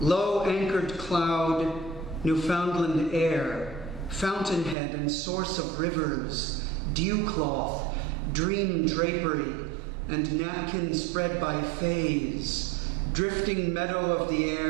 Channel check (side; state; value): left; drops out; at 4.8 s